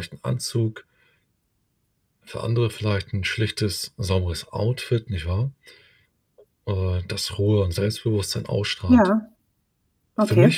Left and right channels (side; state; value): both; identical; correlation 1.00